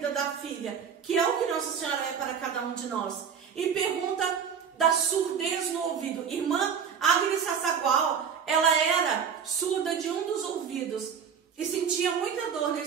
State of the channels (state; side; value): quieter; left; 7.2 dB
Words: da filha, que é o que Nossa Senhora é para cada um de nós. E pergunta da surdez no ouvido. Irmã Agnes Sassagual, ela era surda de um dos ouvidos e sentia muita dor